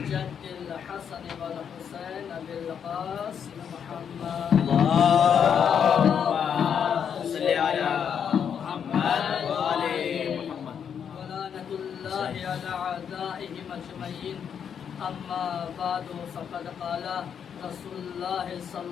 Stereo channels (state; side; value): quieter; right; 7.8 dB